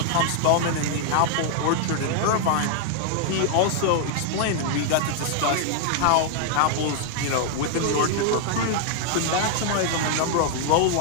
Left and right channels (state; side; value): different; both; correlation 0.00